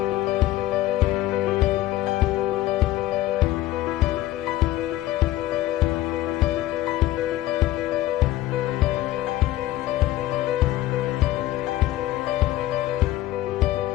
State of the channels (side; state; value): right; quieter; 15.3 dB